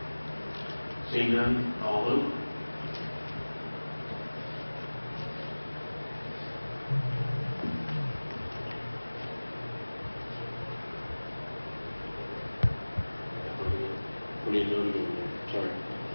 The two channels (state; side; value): inverted; both; correlation -1.00